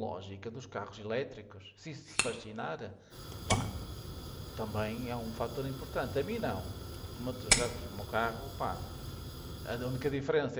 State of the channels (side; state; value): both; identical; correlation 1.00